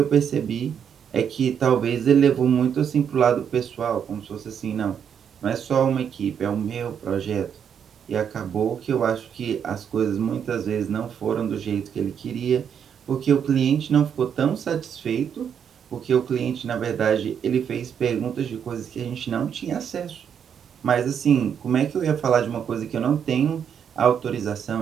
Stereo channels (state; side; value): quieter; left; 8.0 dB